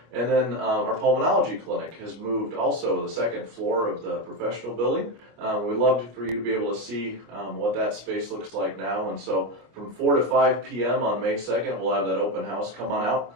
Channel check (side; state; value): left; late; 25 ms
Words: And then our pulmonology clinic has moved also to the second floor of the professional building. We'd love for you to be able to see what that space looks like now. And so from 4 to 5 p.m. on May 2nd, we'll have that open house. Come on